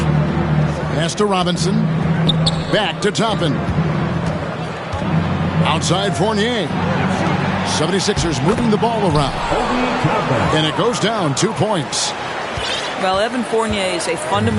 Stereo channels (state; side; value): identical; both; correlation 1.00